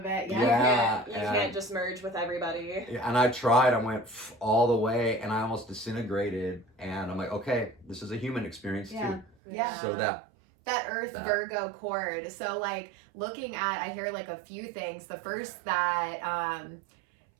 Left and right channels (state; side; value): drops out; left; at 9.3 s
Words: it. You can't just merge with everybody. And I tried, I went all the way, and I almost disintegrated, and I'm like, okay, this is a human experience too. So that Earth Virgo chord. So like looking at, I hear like a few things. The first, that